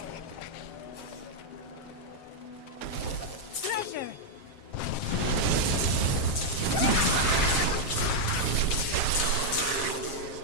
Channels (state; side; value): late; right; 7.5 ms